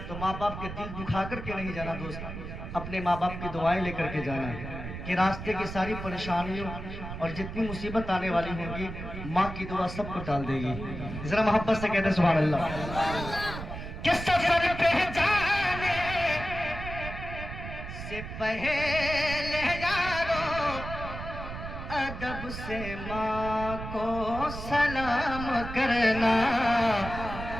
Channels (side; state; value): right; noise; rumble, 8 dB below the sound